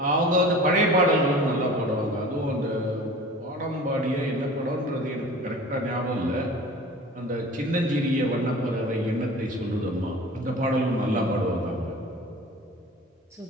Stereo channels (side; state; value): both; normal; correlation 0.40